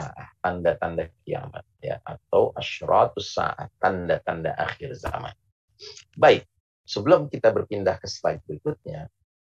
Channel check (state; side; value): identical; both; correlation 1.00